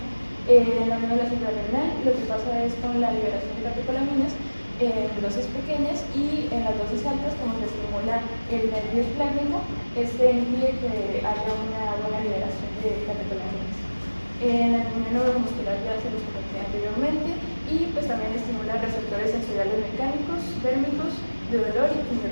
En la médula suprarrenal lo que pasa es con la liberación de catecolaminas en dosis pequeñas y en las dosis altas, como se estimula el nervio esplénico, impide que haya una buena liberación de catecolaminas. En la neuromuscular ya se los comenté anteriormente y pues también estimula receptores sensoriales mecánicos, térmicos, de dolor y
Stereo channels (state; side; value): inverted; both; correlation -1.00